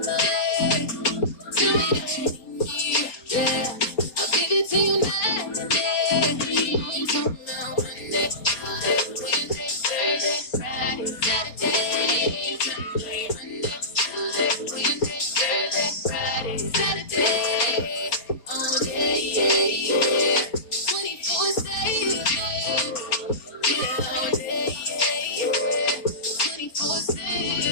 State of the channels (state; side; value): late; right; 4.3 ms